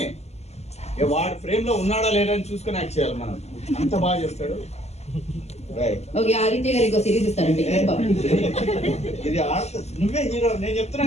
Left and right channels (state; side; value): late; right; 0.31 ms